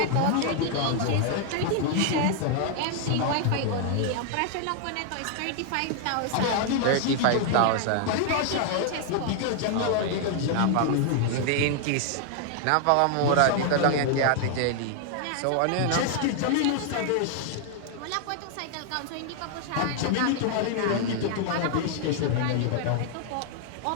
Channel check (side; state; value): both; different; correlation 0.00